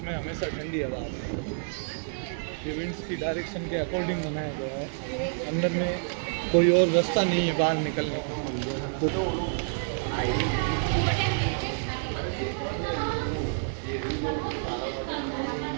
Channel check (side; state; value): left; silent; digital silence